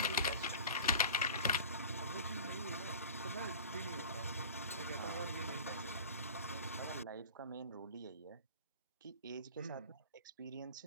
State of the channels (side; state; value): both; inverted; correlation -0.38